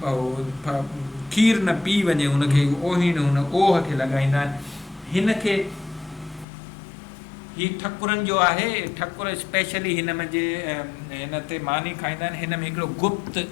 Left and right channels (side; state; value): right; drops out; at 6.5 s